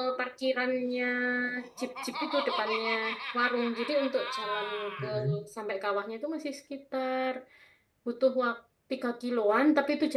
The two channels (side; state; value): both; identical; correlation 1.00